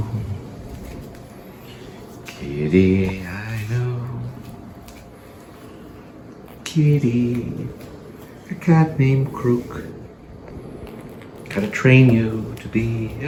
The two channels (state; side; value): identical; both; correlation 1.00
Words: Kitty, I know. Kitty, a cat named Crook. Gotta train you to be